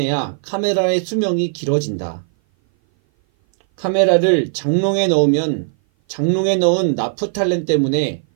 카메라의 수명이 길어진다. 카메라를 장롱에 넣으면 장롱에 넣은 나프탈렌 때문에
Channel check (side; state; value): left; silent; 58 dB below the other